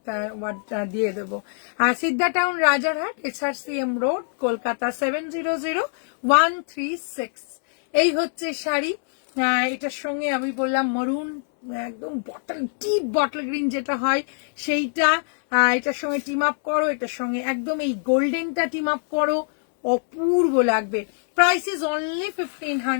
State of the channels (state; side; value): silent; right; 63 dB below the other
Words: ওয়ার্ডটা দিয়ে দেবো। আর Siddha town Rajarhat, SRCM road, Kolkata 700136। এই হচ্ছে শাড়ি। এটার সঙ্গে আমি বললাম মরুন, একদম ডিপ বটল গ্রিন যেটা হয় সেইটা। এটার সঙ্গে টিম আপ করো, এটার সঙ্গে একদম এই গোল্ডেনটা টিম আপ করো, অপূর্ব লাগবে। Price is only